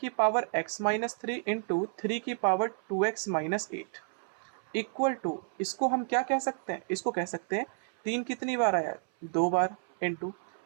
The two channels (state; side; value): silent; left; 57 dB below the other